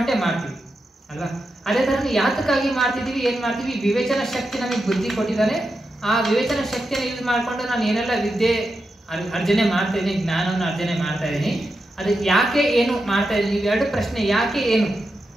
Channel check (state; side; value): normal; both; correlation 0.88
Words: ಮಾಡ್ತೀವಿ ಅಲ್ವಾ. ಅದೇ ತರ ಯಾತಕ್ಕಾಗಿ ಮಾಡ್ತಿದೀವಿ, ಏನ್ ಮಾಡ್ತೀವಿ, ವಿವೇಚನ ಶಕ್ತಿ ನಮಗೆ ಬುದ್ಧಿ ಕೊಟ್ಟಿದ್ದಾನೆ. ಆ ವಿವೇಚನ ಶಕ್ತಿಯನ್ನು ಯೂಸ್ ಮಾಡ್ಕೊಂಡು ನಾನು ಏನೆಲ್ಲ ವಿದ್ಯೆ ಅರ್ಜನೆ ಮಾಡ್ತಾ ಇದ್ದೀನಿ, ಜ್ಞಾನವನ್ನು ಅರ್ಜನೆ ಮಾಡ್ತಾ ಇದ್ದೀನಿ, ಅದಕ್ಕೆ ಯಾಕೆ ಏನು ಮಾಡ್ತಾ ಇದ್ದೀನಿ, ಇವೆರಡು ಪ್ರಶ್ನೆ. ಯಾಕೆ ಏನು,